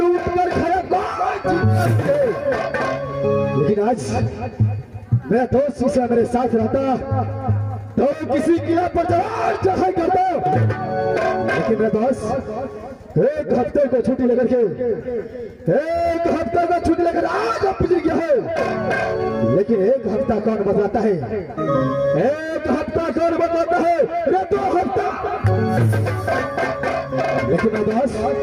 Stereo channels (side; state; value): both; identical; correlation 1.00